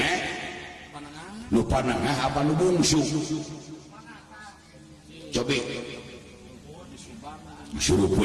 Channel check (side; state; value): both; identical; correlation 1.00